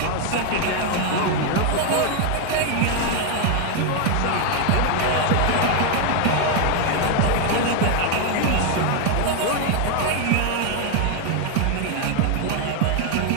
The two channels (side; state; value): both; different; correlation 0.01